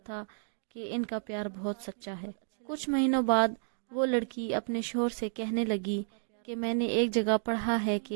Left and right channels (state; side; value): silent; left; digital silence